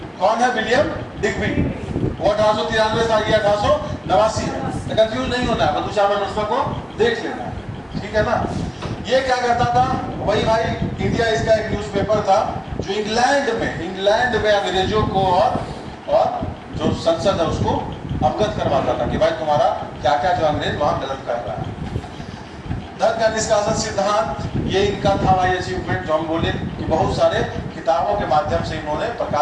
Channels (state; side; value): identical; both; correlation 1.00